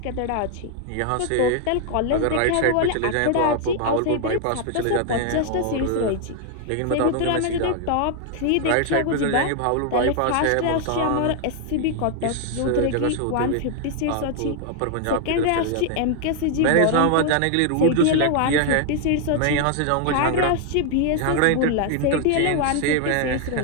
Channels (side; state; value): both; different; correlation 0.00